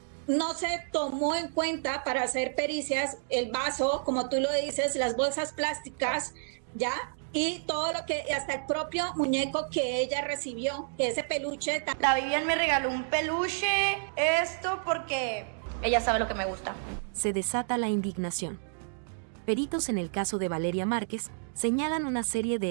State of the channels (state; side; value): silent; left; digital silence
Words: No se tomó en cuenta para hacer pericias el vaso, como tú lo dices, las bolsas plásticas, ¿ya? Y todo lo que, hasta el propio muñeco que ella recibió, que ese peluche. La Vivian me regaló un peluche, esto porque ella sabe lo que me gusta. Se desata la indignación. Peritos en el caso de Valeria Márquez señalan una serie